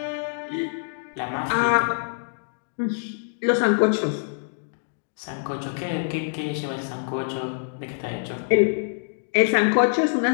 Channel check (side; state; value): right; silent; digital silence